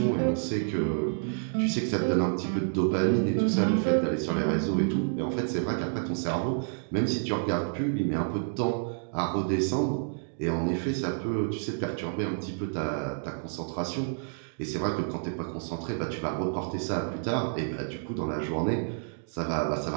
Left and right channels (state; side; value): silent; left; digital silence